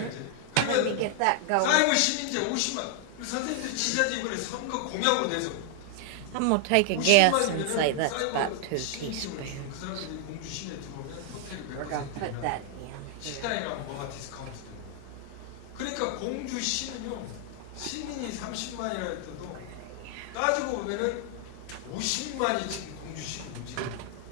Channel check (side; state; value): both; different; correlation 0.00